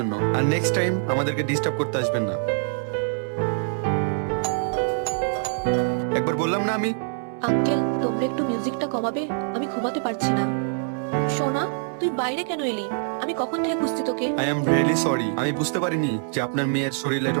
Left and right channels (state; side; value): silent; left; digital silence